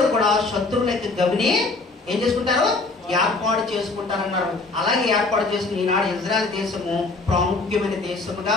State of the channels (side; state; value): right; quieter; 3.5 dB